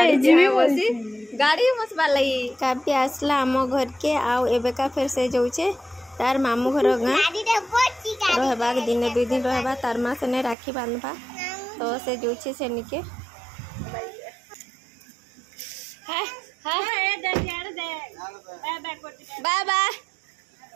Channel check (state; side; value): drops out; left; at 10.6 s